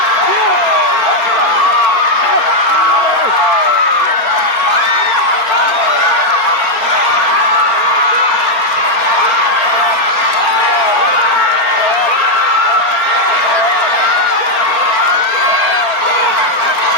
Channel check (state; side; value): late; right; 4.3 ms